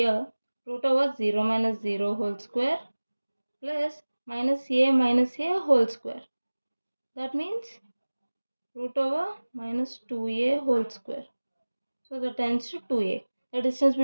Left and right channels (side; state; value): both; inverted; correlation -1.00